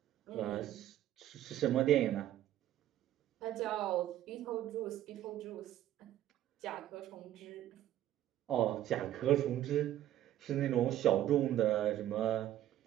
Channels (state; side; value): quieter; left; 12.6 dB